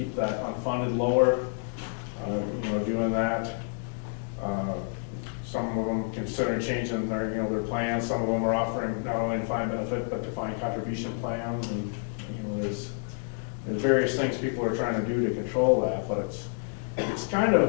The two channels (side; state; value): right; silent; 59 dB below the other